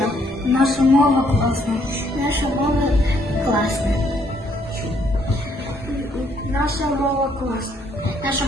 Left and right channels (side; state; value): both; normal; correlation 0.69